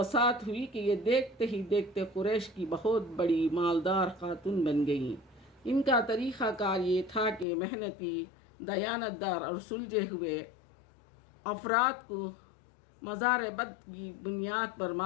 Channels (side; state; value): right; drops out; at 7.5 s